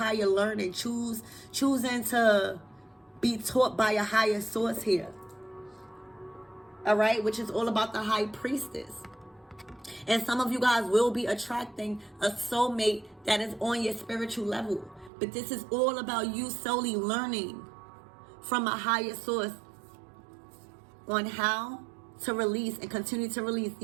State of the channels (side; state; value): left; drops out; at 15.1 s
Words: learning. Choosing to be taught by a higher source here. All right? Which is all about the high priestess. And some of you guys will be attracting a soulmate that is on your spiritual level. But this is all about you solely learning from a higher source on how to release and continue to release